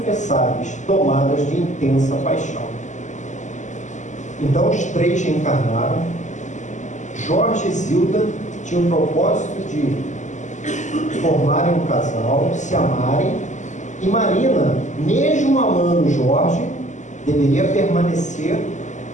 tomadas de intensa paixão. Então os três reencarnaram. Jorge e Zilda tinham o propósito de formarem um casal, se amarem, e Marina, mesmo amando Jorge, deveria permanecer,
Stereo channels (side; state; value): right; late; 0.35 ms